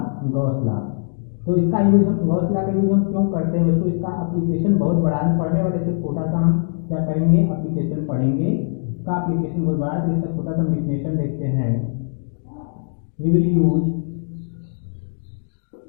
गॉस लॉ। तो इसका यूज हम गॉस लॉ का यूज हम क्यों करते हैं बच्चों, इसका एप्लीकेशन बहुत बड़ा है। पढ़ने वाले इसको छोटा सा हम क्या करेंगे, एप्लीकेशन पढ़ेंगे। इसका एप्लीकेशन बहुत बड़ा है तो इसका छोटा सा डेफिनेशन देखते हैं। We will use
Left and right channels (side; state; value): right; silent; digital silence